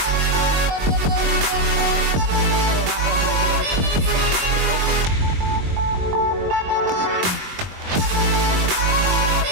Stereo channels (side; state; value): left; late; 22 ms